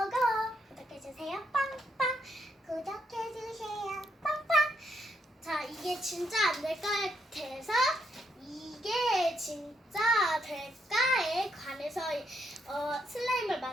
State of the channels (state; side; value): normal; both; correlation 0.77